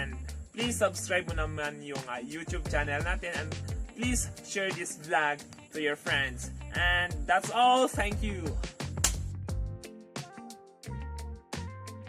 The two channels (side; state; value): both; identical; correlation 1.00